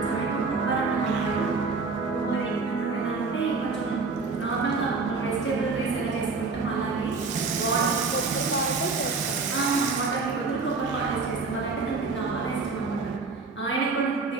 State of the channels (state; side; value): quieter; left; 4.2 dB